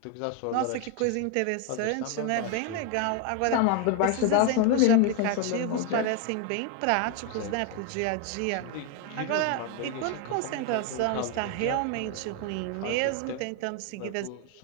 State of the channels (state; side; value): different; both; correlation 0.01